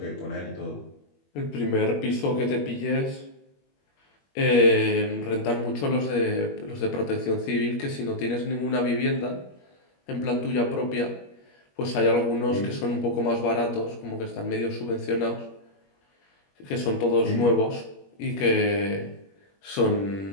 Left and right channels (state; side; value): late; right; 21 ms